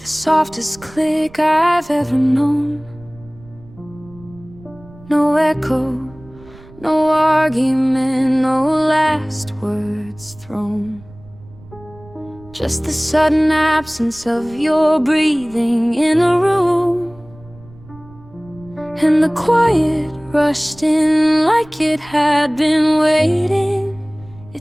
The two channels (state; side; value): noise; right; rumble, 23 dB below the sound